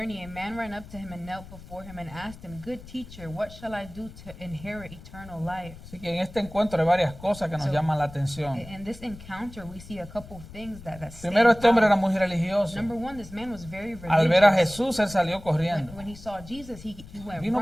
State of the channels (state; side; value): noise; left; rumble, 17 dB below the sound